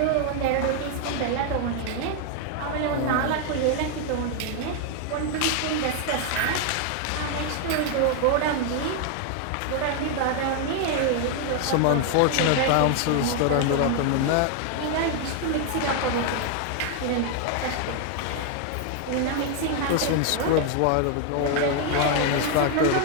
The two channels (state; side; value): different; both; correlation 0.00